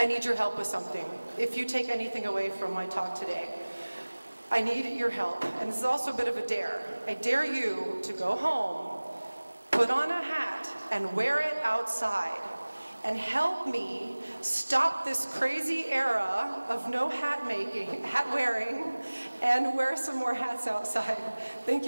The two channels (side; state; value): both; inverted; correlation -1.00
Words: need your help with something. If you take anything away from my talk today, I need your help. And this is also a bit of a dare. I dare you to go home, put on a hat, and wear it outside. And help me stop this crazy era of no hat making, hat wearing, and wear some more hats outside. Thank